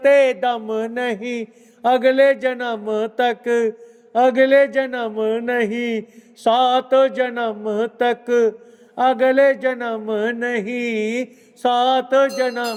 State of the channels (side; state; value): both; identical; correlation 1.00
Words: दम नहीं अगले जन्म तक, अगले जन्म नहीं 7 जन्म तक, अगले जन्म नहीं 7